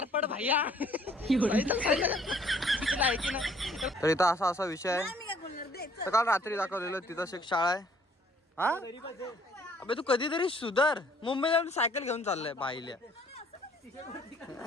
भैया तर इथं असा विषय आहे तर काल रात्री दाखवलेलं तिथं एक शाळा आहे हा अबे तू कधीतरी सुधर मुंबईला सायकल घेऊन चाललाय बाईल्या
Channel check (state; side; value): normal; both; correlation 0.60